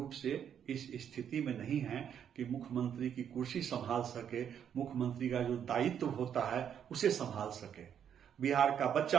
से इस स्थिति में नहीं हैं कि मुख्यमंत्री की कुर्सी संभाल सके, मुख्यमंत्री का जो दायित्व होता है उसे संभाल सके। बिहार का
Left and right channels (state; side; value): quieter; left; 8.7 dB